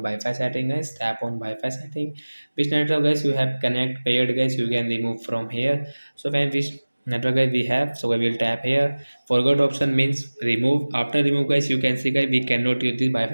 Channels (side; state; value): both; inverted; correlation -1.00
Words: Wi-Fi setting guys. Tap on Wi-Fi setting. Which network guys you have connect paired guys, you can remove from here. So when which network guys we have, so we will tap here. Forgot option means remove. After remove guys, you can see guys we cannot use this